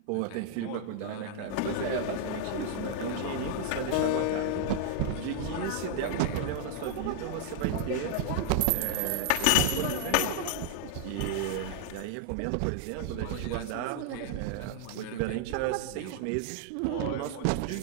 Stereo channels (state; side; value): different; both; correlation 0.00